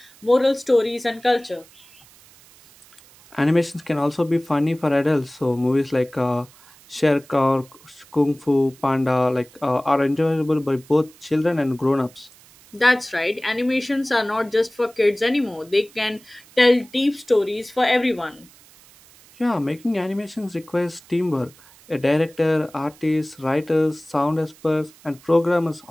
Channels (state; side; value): noise; right; hiss, 26 dB below the sound